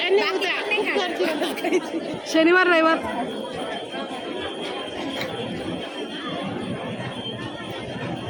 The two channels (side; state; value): both; identical; correlation 1.00